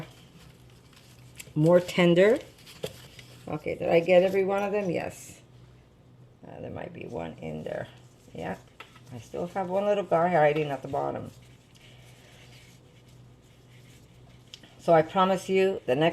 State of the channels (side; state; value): both; identical; correlation 1.00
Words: more tender. Okay, did I get every one of them? Yes. There might be one in there. Yeah. I still have one little guy hiding at the bottom. So I promise you, the